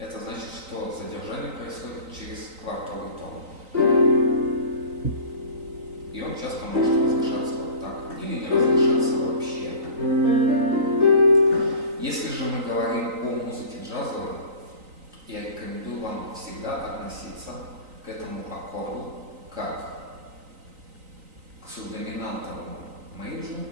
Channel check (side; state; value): left; late; 3.9 ms